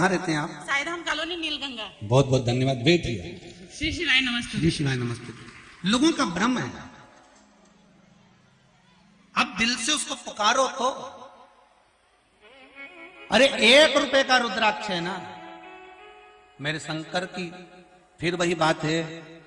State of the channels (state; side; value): identical; both; correlation 1.00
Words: रहते हैं आप? साईधाम कॉलोनी नीलगंगा। बहुत बहुत धन्यवाद। बैठिए। श्री शिवाय नमस्ते। जी शिवाय नमस्ते। लोगों का भ्रम है, अब दिल से उसको पुकारो तो। अरे 1 रुपए का रुद्राक्ष है ना मेरे शंकर की, फिर वही बात है,